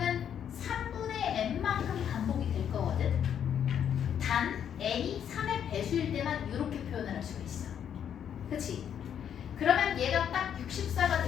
3분의 n만큼 반복이 될 거거든. 단 n이 3의 배수일 때만 이렇게 표현을 할 수가 있어. 그치? 그러면 얘가 딱 64가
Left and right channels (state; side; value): quieter; right; 8.9 dB